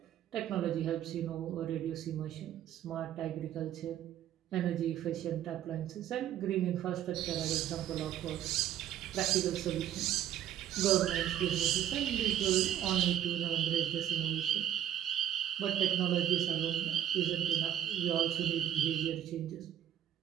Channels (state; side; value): quieter; left; 11.1 dB